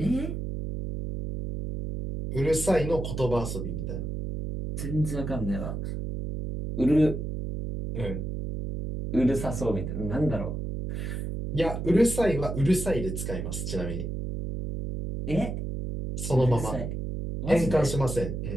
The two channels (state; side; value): noise; right; hum, 4 dB below the sound